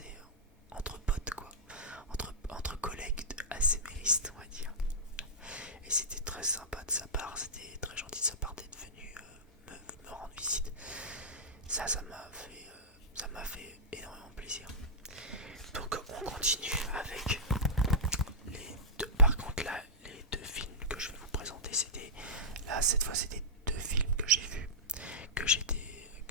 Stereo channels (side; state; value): both; normal; correlation -0.12